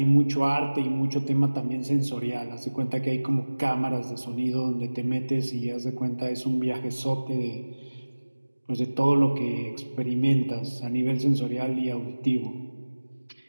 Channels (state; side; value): inverted; both; correlation -1.00